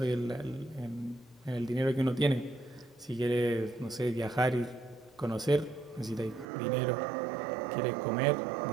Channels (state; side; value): drops out; left; at 6.5 s